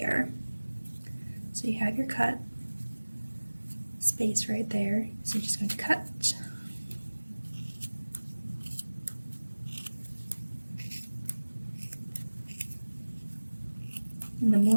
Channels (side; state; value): both; inverted; correlation -1.00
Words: So you have your cut space right there. So you're just going to cut. And the